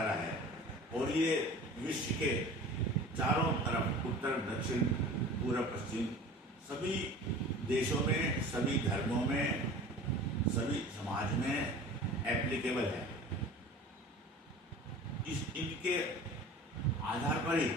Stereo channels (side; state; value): both; normal; correlation 0.41